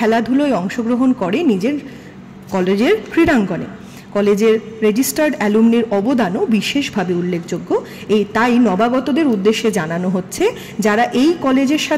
অংশগ্রহণ করে নিজের কলেজের ক্রীড়াঙ্গনে। কলেজের রেজিস্টার্ড অ্যালুমনির অবদানও বিশেষভাবে উল্লেখযোগ্য। তাই নবাগতদের উদ্দেশ্যে জানানো হচ্ছে, যারা এই কলেজের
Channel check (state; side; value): identical; both; correlation 1.00